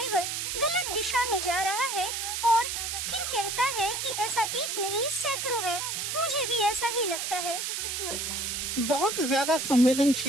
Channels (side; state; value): right; noise; hiss, 2 dB below the sound